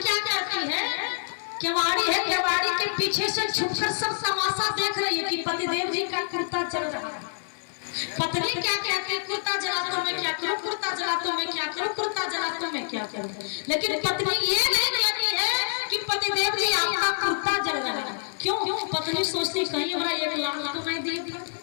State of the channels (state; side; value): silent; right; 60 dB below the other